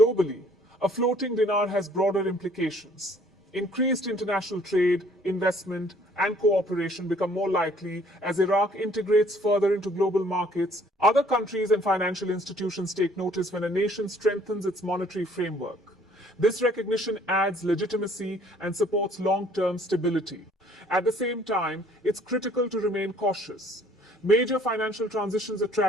a floating dinar has broader implications. Increased international trade, investment, and cooperation become more likely as Iraq integrates further into global markets. Other countries and financial institutions take notice when a nation strengthens its monetary framework. This recognition adds legitimacy and supports long-term stability. At the same time, it's critical to remain cautious. Major financial transitions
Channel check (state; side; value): normal; both; correlation 0.58